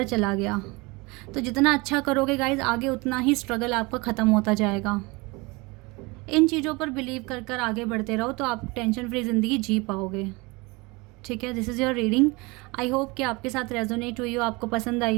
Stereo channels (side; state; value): left; quieter; 25.6 dB